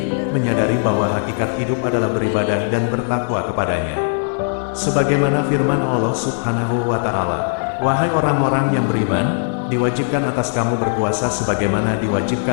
menyadari bahwa hakikat hidup adalah beribadah dan bertakwa kepadanya. Sebagaimana firman Allah Subhanahu wa Ta'ala, "Wahai orang-orang yang beriman, diwajibkan atas kamu berpuasa sebagaimana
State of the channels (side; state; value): right; silent; 67 dB below the other